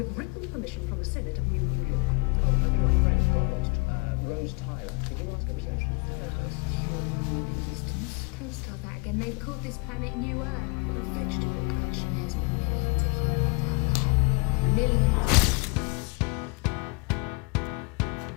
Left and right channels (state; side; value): quieter; right; 30.1 dB